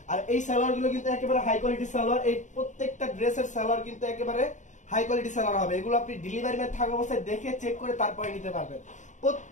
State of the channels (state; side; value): late; right; 0.35 ms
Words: আর এই সালোয়ার গুলো কিন্তু একেবারে হাই কোয়ালিটির সালোয়ার। এই প্রত্যেকটা ড্রেসের সালোয়ার কিন্তু একেবারে হাই কোয়ালিটি সালোয়ার হবে। এগুলো আপনি ডেলিভারি ম্যান থাকা অবস্থায় দেখে চেক করে তারপরে নিতে পারবেন।